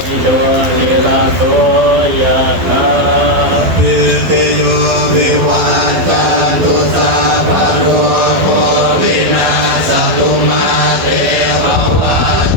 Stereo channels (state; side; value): late; left; 12 ms